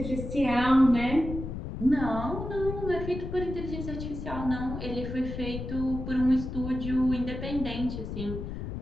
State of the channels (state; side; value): noise; left; rumble, 6 dB below the sound